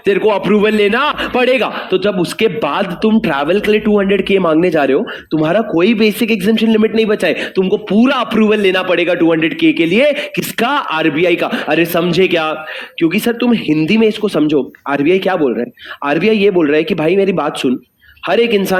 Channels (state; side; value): identical; both; correlation 1.00